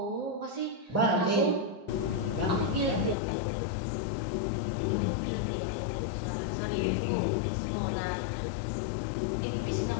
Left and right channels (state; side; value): drops out; right; at 3.2 s